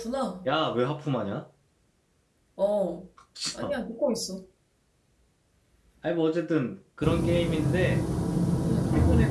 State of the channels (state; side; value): identical; both; correlation 1.00